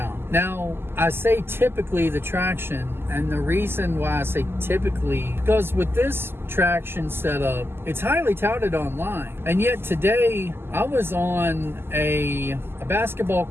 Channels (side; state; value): left; late; 0.11 ms